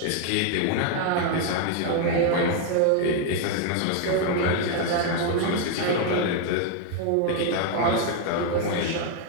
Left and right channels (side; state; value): both; different; correlation 0.00